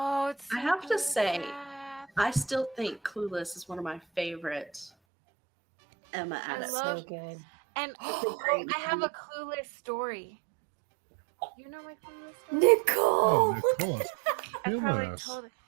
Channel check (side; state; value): left; drops out; at 4.9 s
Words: it's. I so have to good, say, Beth. I still think Clueless is one of my favorite Emma I adaptations. love- So good. And great I have a clueless story. You know my clueless story? Nicole! Oh, Nicole is I killing probably us. told it.